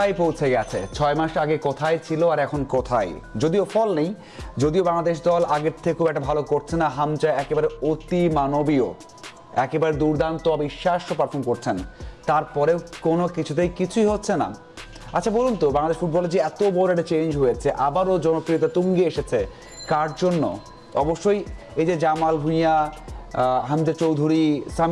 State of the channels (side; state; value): both; identical; correlation 1.00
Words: পৌঁছে গেছে, 6 মাস আগে কোথায় ছিল আর এখন কোথায়? যদিও ফল নেই, যদিও বাংলাদেশ দল আগের থেকেও একটা ভালো করছে না, হামজা একেবারে অতি মানবীয়, একেবারে দুর্দান্ত অবিশ্বাস্য পারফর্ম করছেন, তারপরেও কোনো কিছুই হচ্ছে না। আচ্ছা বলুন তো, বাংলাদেশ ফুটবলে যে এত বড় একটা চেঞ্জ হয়েছে, আবারও জনপ্রিয়তা তুঙ্গে এসেছে, কার জন্য? অবশ্যই এই যে জামাল ভুঁইয়া, হামজা চৌধুরী,